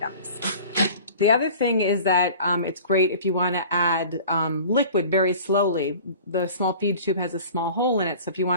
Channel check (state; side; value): inverted; both; correlation -0.43